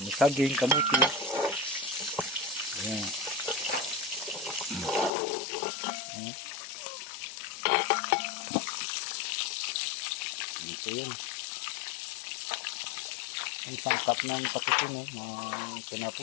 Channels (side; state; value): right; drops out; at 5.1 s